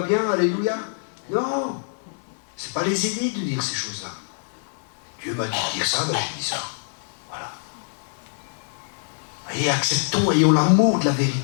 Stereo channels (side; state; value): right; silent; digital silence